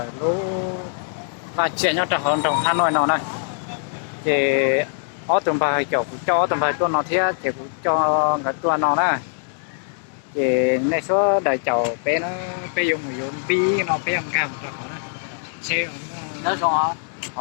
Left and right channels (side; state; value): right; silent; digital silence